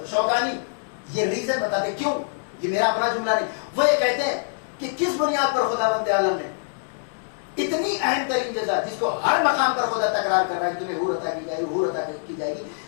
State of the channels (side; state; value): right; silent; digital silence